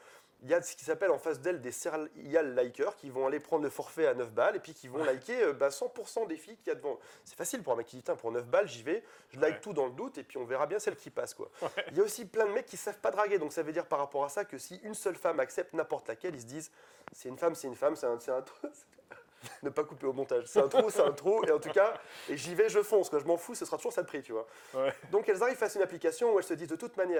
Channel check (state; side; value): identical; both; correlation 1.00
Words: il y a ce qui s'appelle en face d'elle des serial likers qui vont aller prendre le forfait à 9 balles et puis qui vont liker 100% des filles qu'il y a devant. C'est facile pour un mec qui dit, pour 9 balles, j'y vais, je like tout dans le doute et puis on verra bien celle qui passe. Quoi. Il y a aussi plein de mecs qui ne savent pas draguer, donc ça veut dire par rapport à ça que si une seule femme accepte n'importe laquelle, ils se disent, c'est une femme, c'est un trou. Ne pas couper au montage, c'est un trou, et en tout cas, et j'y vais, je fonce, quoi. Je m'en fous, ce sera toujours ça de prix, tu vois. Donc elles arrivent face à une application où elles se disent de toute